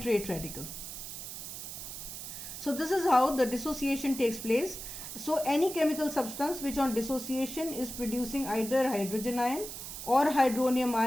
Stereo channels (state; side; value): noise; right; hiss, 9 dB below the sound